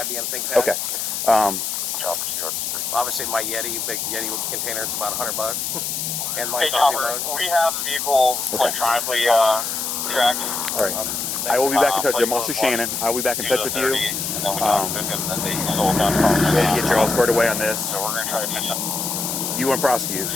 ThinkPad. Okay. Obviously, my Yeti, big Yeti container, it's about $100. And my Hey, coffee Chopper, mug. we have the vehicle electronically tracked. All right. I will be back in touch with you. I'm Officer Shannon. I will be back in touch with you. And get you all squared away on this. So we're going to try to catch up. You want to prosecute?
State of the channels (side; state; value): left; noise; hiss, 2 dB below the sound